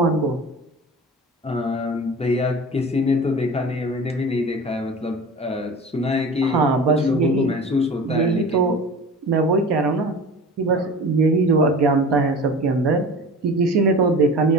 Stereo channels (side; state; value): both; normal; correlation 0.36